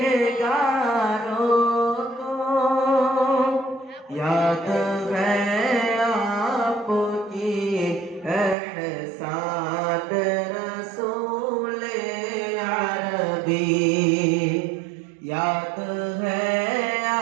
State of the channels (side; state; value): left; drops out; at 8.6 s